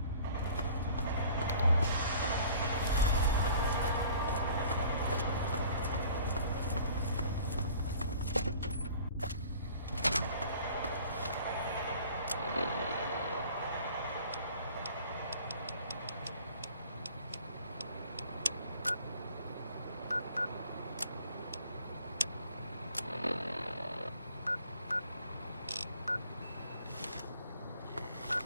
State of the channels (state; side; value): inverted; both; correlation -0.50